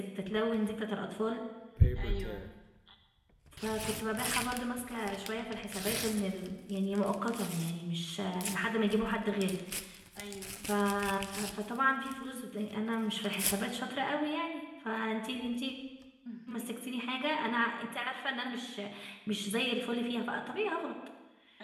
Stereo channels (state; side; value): identical; both; correlation 1.00